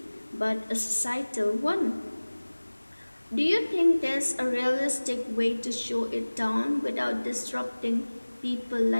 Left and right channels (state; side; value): inverted; both; correlation -1.00